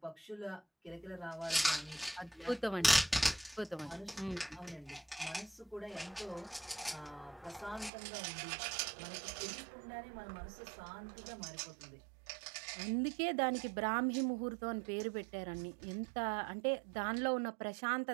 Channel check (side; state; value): left; drops out; at 7.9 s